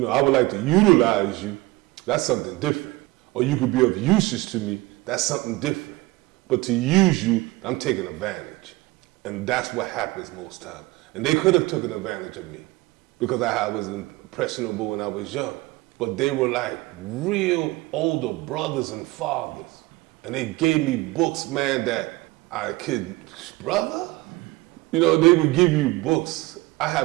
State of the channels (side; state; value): left; quieter; 21.0 dB